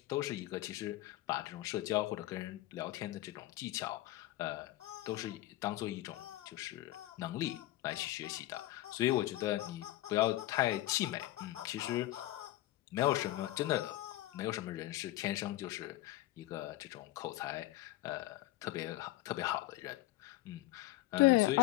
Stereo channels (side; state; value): right; quieter; 16.5 dB